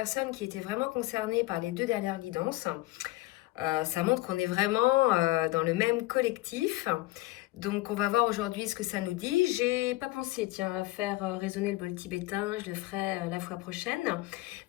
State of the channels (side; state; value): right; quieter; 19.1 dB